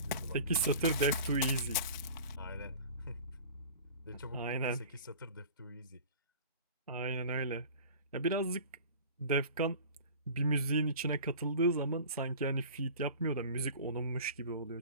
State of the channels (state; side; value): inverted; both; correlation -0.41